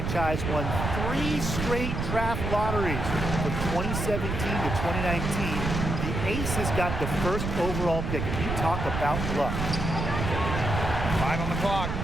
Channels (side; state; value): right; noise; rumble, 3 dB below the sound